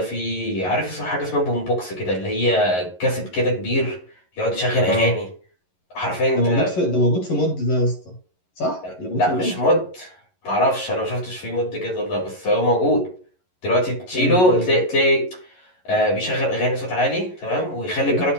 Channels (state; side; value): late; right; 11 ms